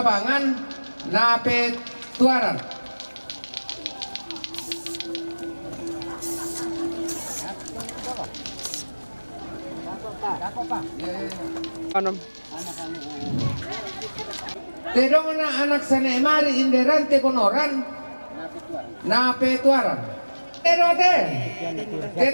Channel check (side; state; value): both; inverted; correlation -1.00